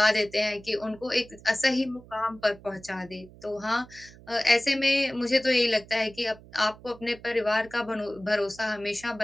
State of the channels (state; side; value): noise; right; hum, 21 dB below the sound